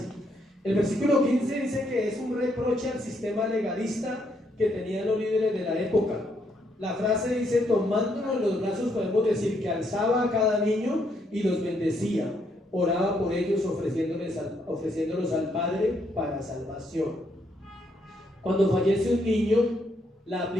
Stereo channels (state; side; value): normal; both; correlation 0.74